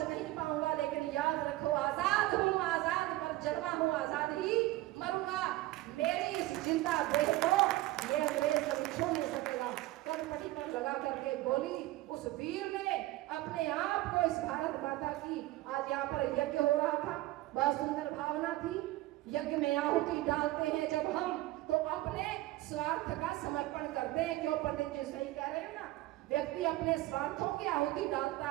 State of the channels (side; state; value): left; quieter; 17.4 dB